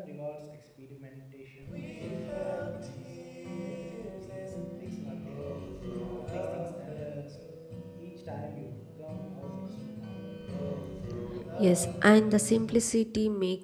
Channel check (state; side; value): identical; both; correlation 1.00